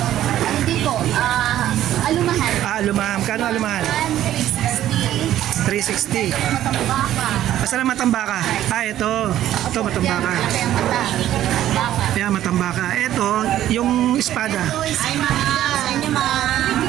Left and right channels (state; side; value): quieter; left; 12.5 dB